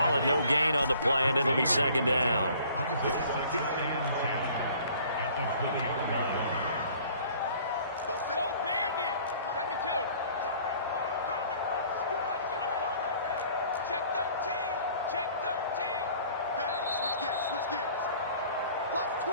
it no gain on the play, and it'll be 2nd down.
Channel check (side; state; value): both; inverted; correlation -0.53